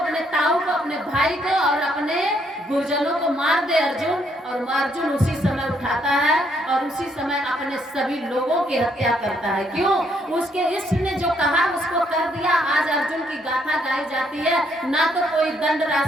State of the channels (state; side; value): normal; both; correlation 0.71